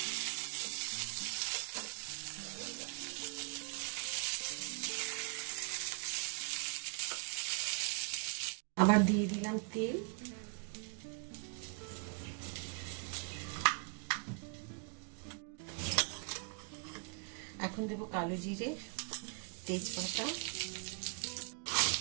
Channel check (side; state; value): left; quieter; 37.9 dB